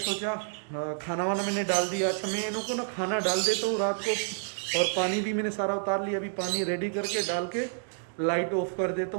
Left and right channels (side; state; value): left; silent; digital silence